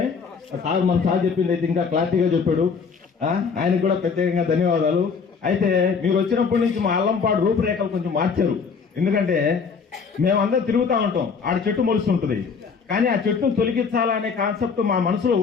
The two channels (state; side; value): quieter; right; 5.6 dB